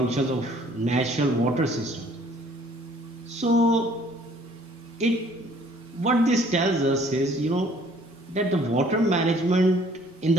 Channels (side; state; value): both; normal; correlation 0.58